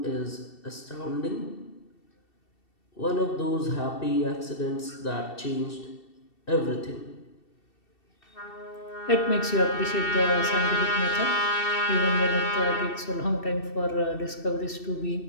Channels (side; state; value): right; late; 2.7 ms